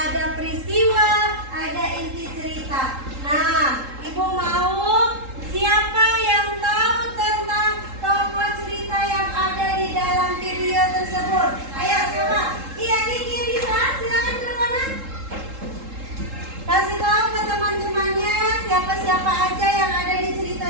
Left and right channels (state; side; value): late; left; 3.7 ms